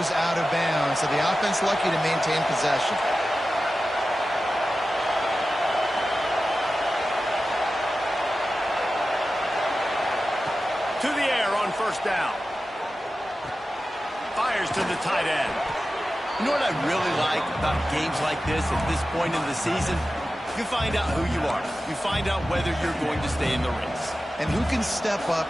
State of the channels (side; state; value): both; normal; correlation 0.94